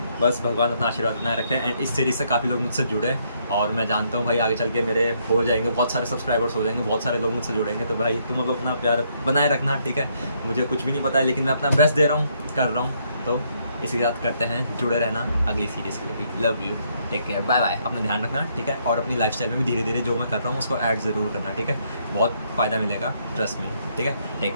बस भगवान अपना आशीर्वाद बनाए रखें। एंड इस सीरीज़ से काफ़ी लोग मुझसे जुड़े, और मैं जानता हूँ भाई आगे चल के मेरे हो जाएंगे, बहुत सारे सब्सक्राइबर्स हो जाएंगे, बहुत सारे लोग मुझसे जुड़ेंगे। तो भाई तुम लोग अपना प्यार बनाए रखना, ठीक है। मुझे कुछ भी नहीं पता है, लेकिन मैं अपना बेस्ट दे रहा हूँ, कर रहा हूँ। तो इसी के साथ करते हैं, जुड़े रहना अगली सीरीज़ के लिए भी। Love you, take care, bye bye. अपना ध्यान रखना, ठीक है। और अपनी लाइफस्टाइल में भी धीरे धीरे जो मैं कर रहा हूँ उसको ऐड ज़रूर करना, ठीक है। बहुत फ़ायदा मिलेगा, ट्रस्ट में, ठीक है।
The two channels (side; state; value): both; inverted; correlation -0.72